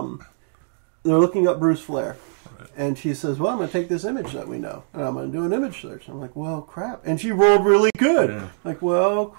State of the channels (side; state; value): left; silent; digital silence